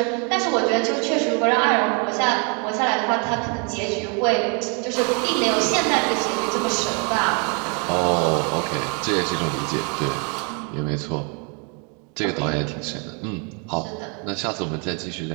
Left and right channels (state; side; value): quieter; left; 36.2 dB